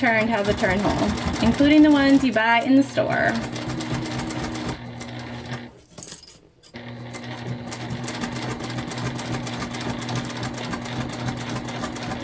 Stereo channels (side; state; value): both; identical; correlation 1.00